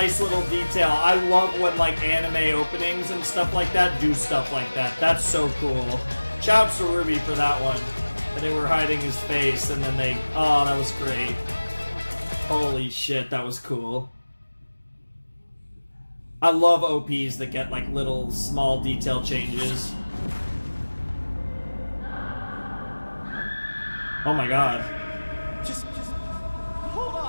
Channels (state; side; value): inverted; both; correlation -1.00